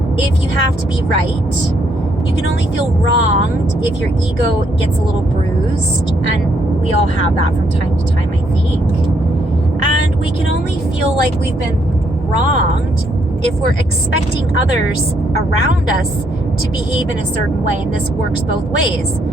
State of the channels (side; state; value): both; normal; correlation 0.73